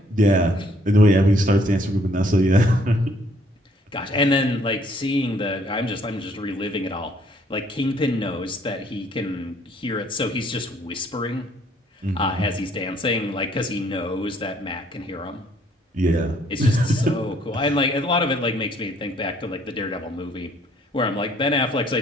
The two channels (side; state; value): both; normal; correlation 0.63